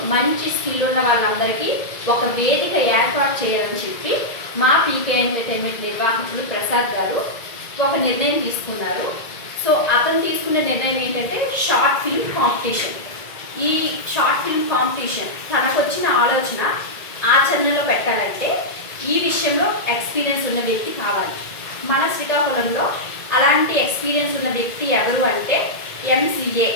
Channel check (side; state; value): right; late; 1.9 ms